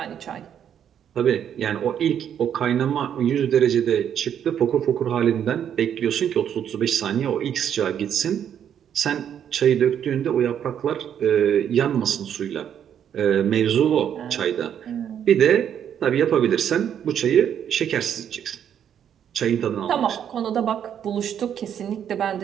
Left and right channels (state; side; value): quieter; left; 9.1 dB